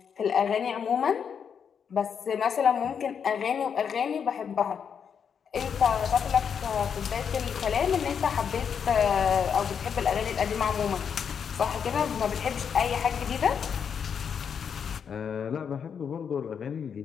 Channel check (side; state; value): right; quieter; 7.2 dB